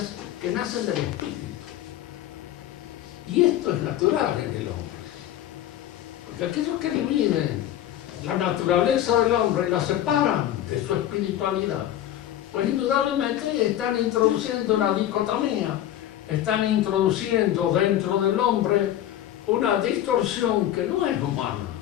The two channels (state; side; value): quieter; right; 12.2 dB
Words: que nacen del espíritu. Y esto es natural en el hombre. Porque aquellos que dividen la naturaleza del hombre y la separan de su espiritualidad, pues indudablemente están introduciendo una dicotomía, están introduciendo dentro del hombre una distorsión que no es humana.